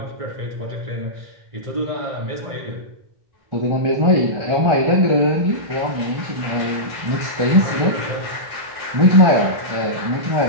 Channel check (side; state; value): left; late; 1.4 ms